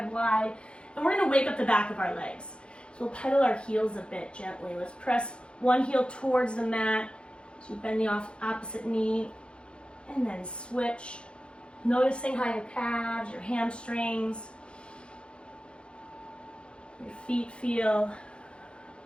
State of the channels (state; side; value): late; right; 0.056 ms